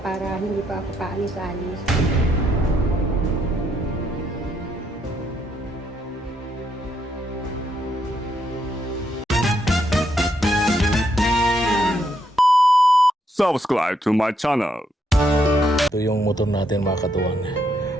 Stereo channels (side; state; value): both; normal; correlation 0.76